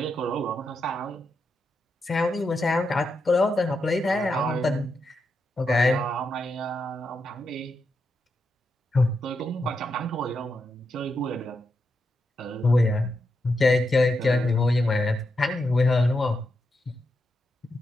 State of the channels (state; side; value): normal; both; correlation 0.85